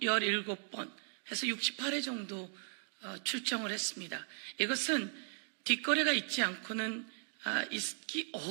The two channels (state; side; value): silent; left; 53 dB below the other